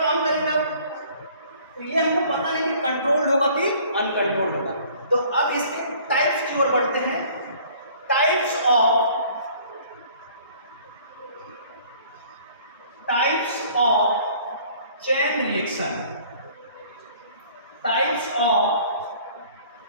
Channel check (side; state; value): both; inverted; correlation -0.54